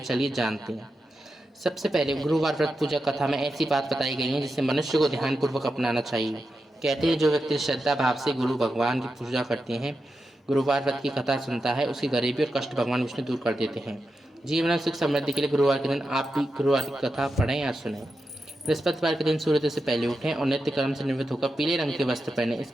जानते हैं। सबसे पहले गुरुवार व्रत पूजा कथा में ऐसी बात बताई गई है जिसे मनुष्य को ध्यानपूर्वक अपनाना चाहिए। कहते हैं जो व्यक्ति श्रद्धा भाव से गुरु भगवान की पूजा करते हैं, गुरुवार व्रत की कथा सुनता है, उसकी गरीबी और कष्ट भगवान विष्णु दूर कर देते हैं। जीवन में सुख समृद्धि के लिए गुरुवार के दिन आप भी गुरुवार की कथा पढ़ें या सुनें। बृहस्पतिवार के दिन सूर्योदय से पहले उठें और नित्य कर्म से निवृत्त होकर पीले रंग के वस्त्र पहनें।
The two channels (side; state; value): both; normal; correlation 0.89